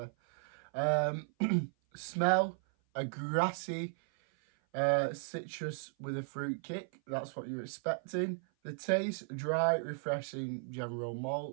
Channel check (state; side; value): silent; left; 54 dB below the other